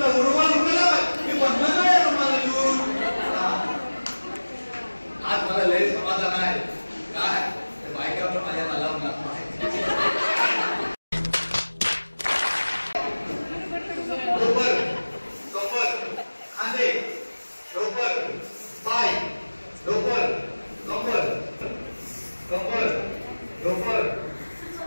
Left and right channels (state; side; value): inverted; both; correlation -1.00